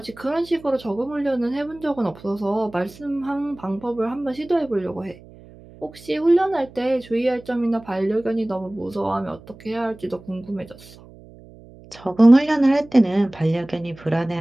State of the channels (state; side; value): noise; right; hum, 21 dB below the sound